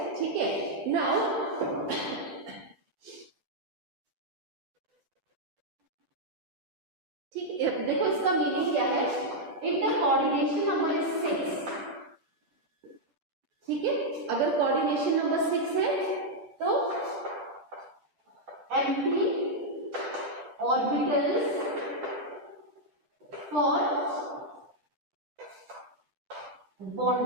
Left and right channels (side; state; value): left; late; 11 ms